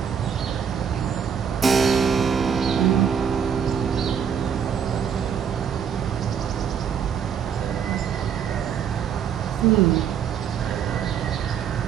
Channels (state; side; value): quieter; left; 7.7 dB